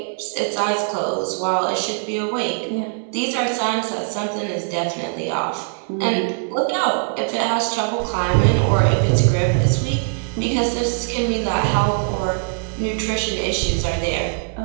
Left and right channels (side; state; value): left; silent; 65 dB below the other